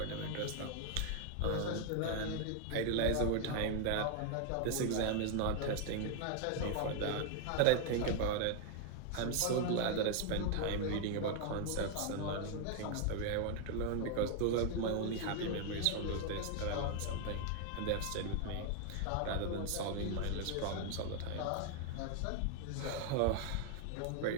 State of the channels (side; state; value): both; different; correlation 0.00